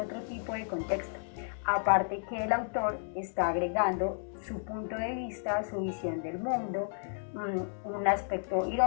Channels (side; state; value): right; silent; digital silence